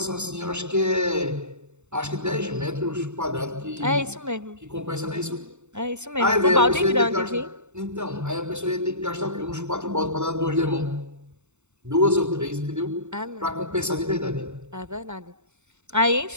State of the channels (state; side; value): late; left; 0.83 ms